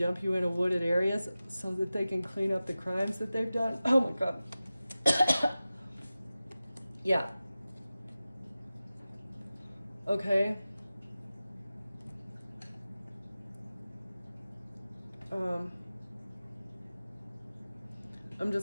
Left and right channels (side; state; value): both; inverted; correlation -0.95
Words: you in a wooded areas so that they can clean up the crimes that they've done. Oh my God. Yeah. Okay. I'm